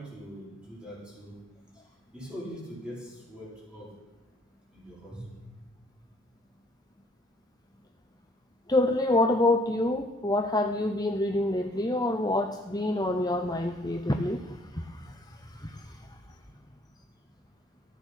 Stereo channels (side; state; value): both; normal; correlation 0.62